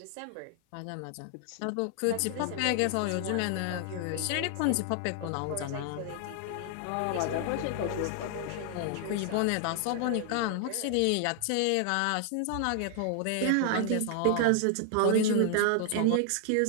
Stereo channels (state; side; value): different; both; correlation 0.00